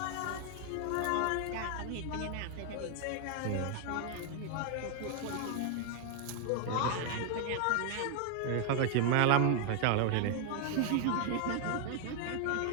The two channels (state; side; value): different; both; correlation 0.00